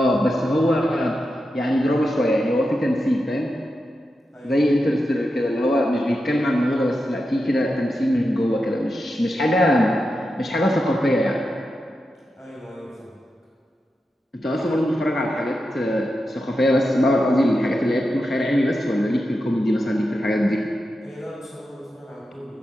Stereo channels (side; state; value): both; normal; correlation 0.89